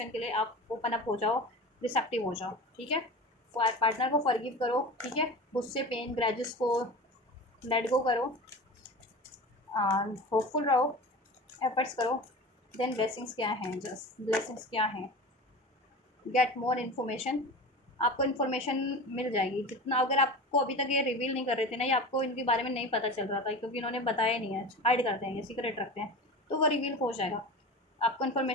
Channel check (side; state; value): both; normal; correlation 0.32